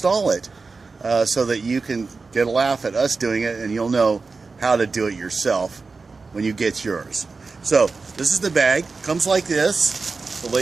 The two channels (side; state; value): left; quieter; 4.2 dB